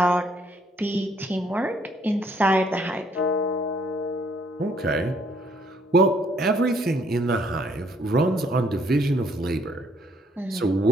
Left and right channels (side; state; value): both; normal; correlation 0.67